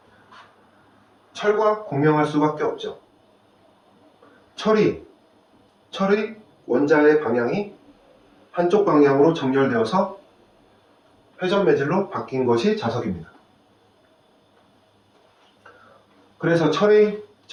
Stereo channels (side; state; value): both; identical; correlation 1.00